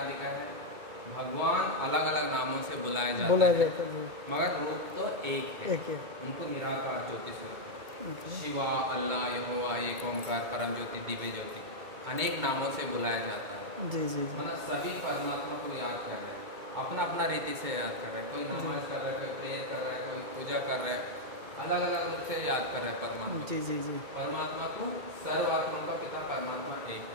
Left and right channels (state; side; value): late; left; 2.2 ms